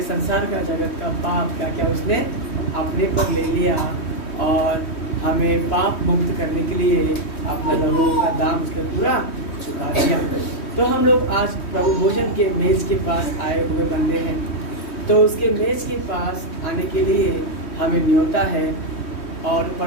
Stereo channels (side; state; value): right; late; 3.2 ms